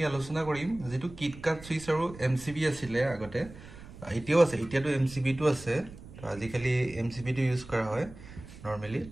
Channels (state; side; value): noise; right; rumble, 16 dB below the sound